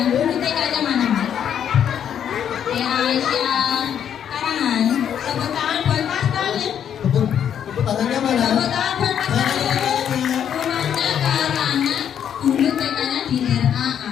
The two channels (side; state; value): right; quieter; 9.0 dB